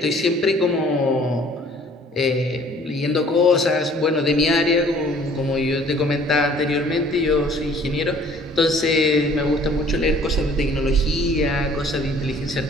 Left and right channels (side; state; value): both; normal; correlation 0.55